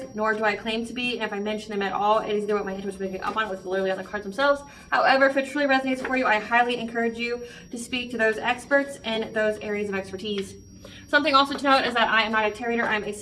nor do I claim to be. And if I mention them at all, it is what my intuition is picking up on, what's literally on the cards themselves. However, if it truly resonates for you, I highly encourage you to speak to those experts in those areas of expertise. Something also to note is that I am not a tarot reader, I'm a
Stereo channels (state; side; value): identical; both; correlation 1.00